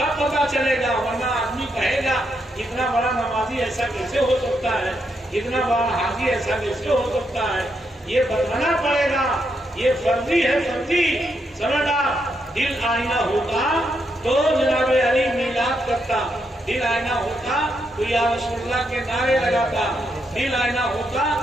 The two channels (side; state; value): both; normal; correlation 0.80